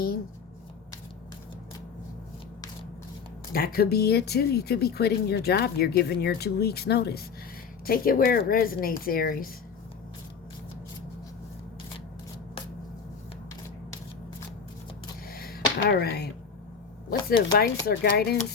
That could be it too. You could be quitting your job. You're giving your 2 weeks notice. Take it where it resonates, Aries. All right. What's the advice or guidance?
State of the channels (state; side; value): quieter; right; 6.1 dB